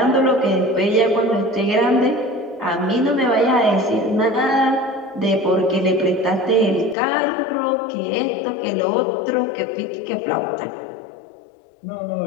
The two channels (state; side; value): drops out; right; at 7.0 s